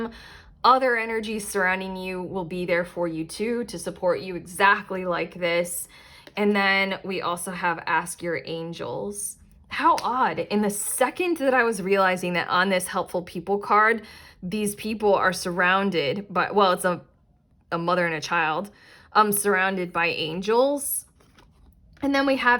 Other energies surrounding you will be there for you too, to support you exactly like this. And then we also have ask your angels. How odd. In the second that I was realizing that on this helpful people card, these people are surrounded by, well, it's a mother and a child, surrounded by angels. And then we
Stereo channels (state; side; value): identical; both; correlation 1.00